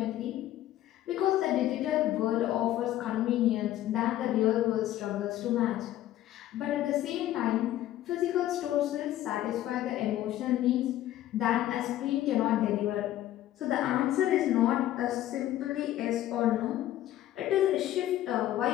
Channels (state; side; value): quieter; right; 13.4 dB